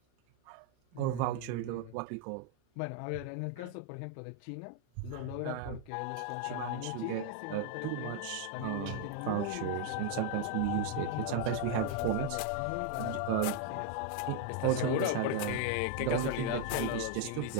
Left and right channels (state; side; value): different; both; correlation 0.00